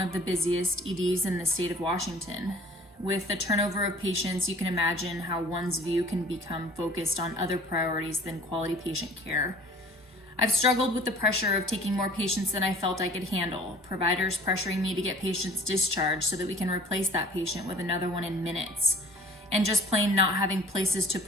of the busiest EDs in the state of Washington. With the turnover of patients, you can imagine how one's view can become focused on other priorities than quality patient care. I've struggled with the pressure of taking more patients than I felt I could handle, providers pressuring me to get patients discharged so that we can replace that patient with another one in minutes, and just plain not having places to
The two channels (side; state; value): both; normal; correlation 0.48